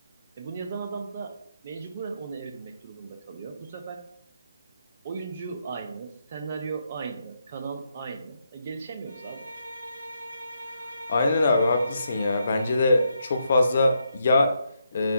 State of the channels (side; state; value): both; inverted; correlation -0.80